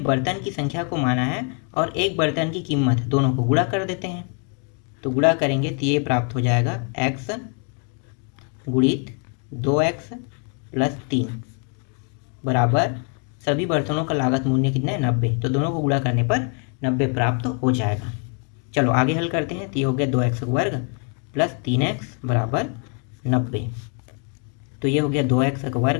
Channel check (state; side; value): quieter; right; 39.8 dB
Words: की संख्या को माना है और एक बर्तन की कीमत, दोनों को गुणा कर देते हैं। तो गुणा करेंगे तो ये प्राप्त हो जाएगा x गुणित 2x प्लस 3 बराबर सभी बर्तनों का लागत मूल्य कितना है, 90। तो दोनों को गुणा करने पर 90 प्राप्त हो जाएगा। चलो आगे हल करते हैं। तो ये हो गया 2x वर्ग प्लस 3x बराबर 90। तो ये हो गया 2x